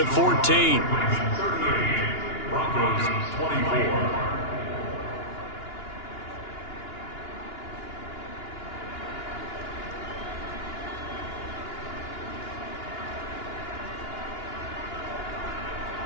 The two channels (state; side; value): late; right; 2.9 ms